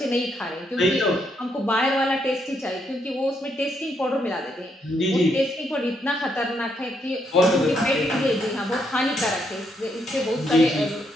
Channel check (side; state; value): both; normal; correlation 0.76